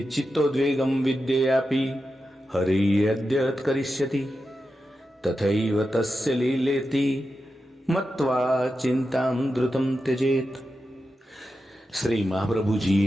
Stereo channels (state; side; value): normal; both; correlation 0.90